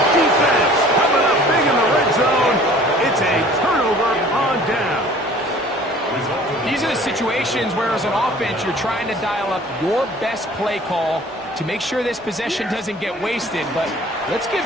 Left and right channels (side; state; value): both; normal; correlation 0.50